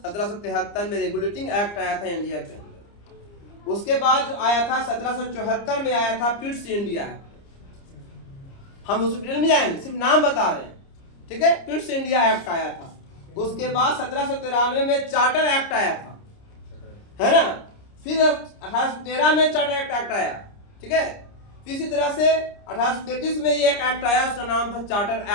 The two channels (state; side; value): late; right; 30 ms